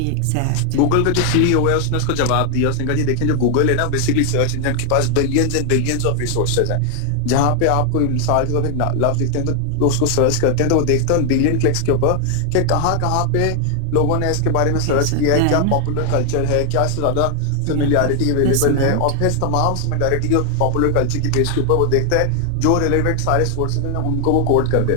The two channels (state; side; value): different; both; correlation 0.00